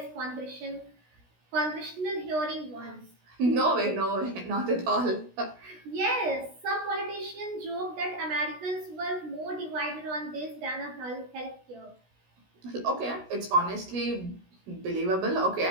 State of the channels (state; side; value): late; left; 16 ms